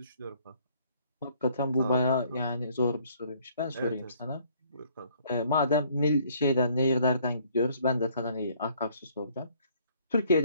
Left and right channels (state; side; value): inverted; both; correlation -0.63